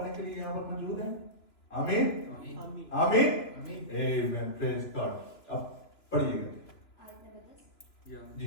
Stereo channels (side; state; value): right; late; 3.0 ms